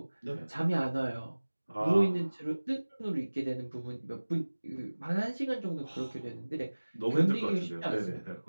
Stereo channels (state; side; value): inverted; both; correlation -1.00